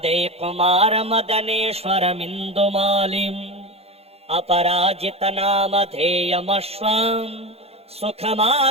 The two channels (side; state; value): left; late; 0.29 ms